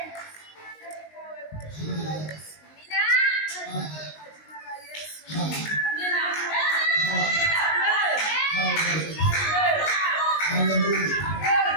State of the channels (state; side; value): late; right; 19 ms